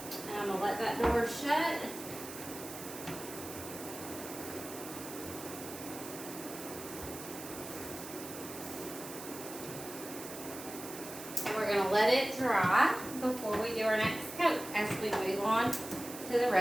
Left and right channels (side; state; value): right; noise; hiss, 11 dB below the sound